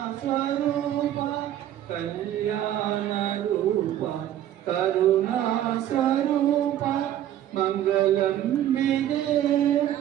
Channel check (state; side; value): quieter; left; 11.8 dB